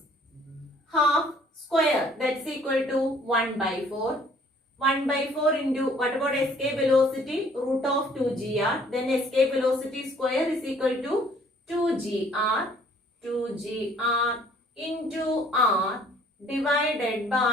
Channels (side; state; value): both; normal; correlation 0.58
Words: half square, that's equal to 1 by 4. 1 by 4 into, what about escape velocity? Root of 2gr. Then escape velocity square is equal to 2gr into r divided